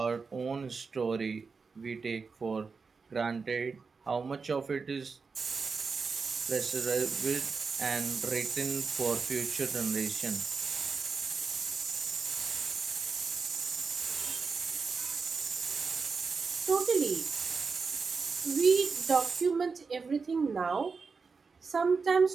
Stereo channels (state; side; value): quieter; left; 4.9 dB